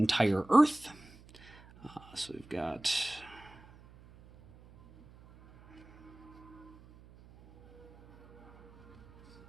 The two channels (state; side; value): noise; right; hum, 23 dB below the sound